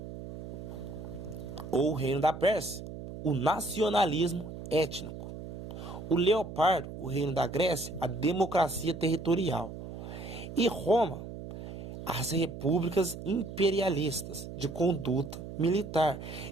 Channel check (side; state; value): right; noise; hum, 10 dB below the sound